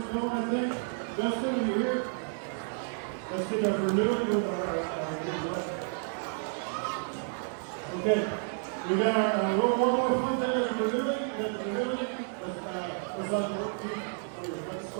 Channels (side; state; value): left; silent; 57 dB below the other